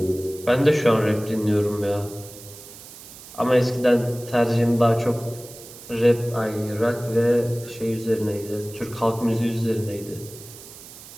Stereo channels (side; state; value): right; noise; hiss, 17 dB below the sound